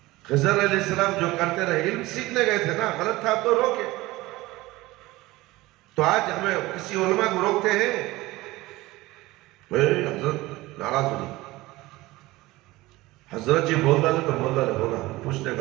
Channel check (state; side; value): quieter; left; 19.4 dB